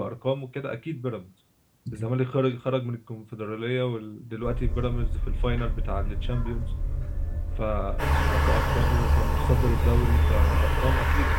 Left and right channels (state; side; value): identical; both; correlation 1.00